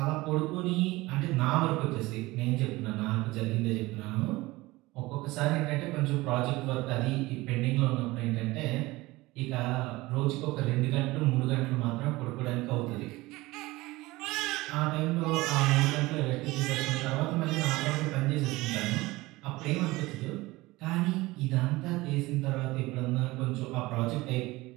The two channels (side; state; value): left; quieter; 20.3 dB